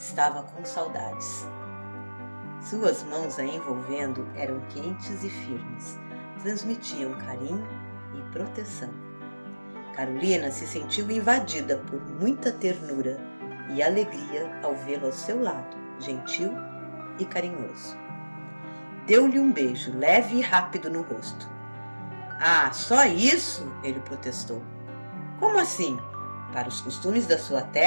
com saudades. Suas mãos a envolvendo eram quentes e firmes, transmitiam carinho e proteção. Carolina se sentiu invadida por muita ternura e alegria ao vê-lo ao seu lado, gentil e carinhoso. Deu-lhe um beijo leve e rápido no rosto. "Ah, só isso?" ele protestou. "Como assim? Para os costumes da sua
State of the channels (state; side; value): inverted; both; correlation -1.00